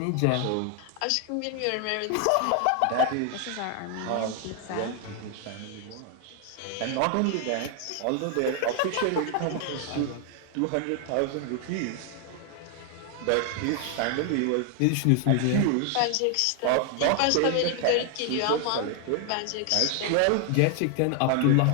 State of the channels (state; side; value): different; both; correlation 0.00